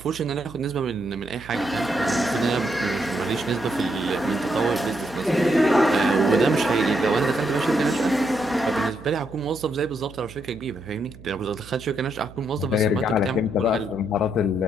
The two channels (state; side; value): noise; right; hum, 19 dB below the sound